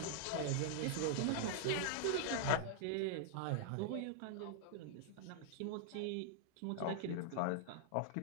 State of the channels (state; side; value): different; both; correlation -0.01